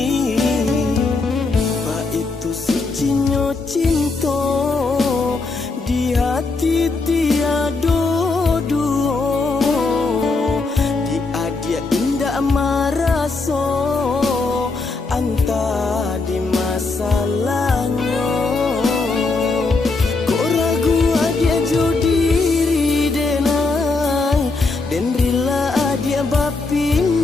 Ba itu sucinya cinta di hati tiada dua. Dia dia indah marasa anta di masalahnya. Kok ragu dia jodiri denai dan rela dia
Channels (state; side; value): quieter; right; 3.7 dB